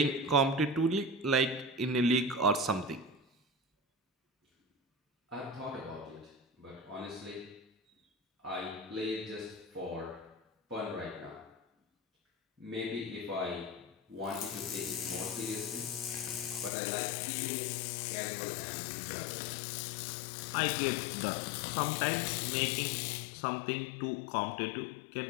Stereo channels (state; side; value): drops out; right; at 16.7 s